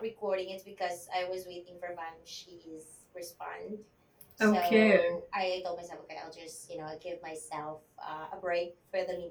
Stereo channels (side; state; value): both; identical; correlation 1.00